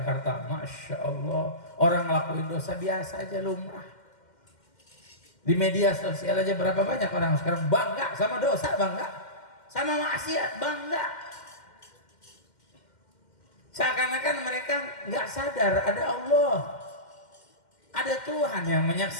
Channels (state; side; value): late; right; 2.1 ms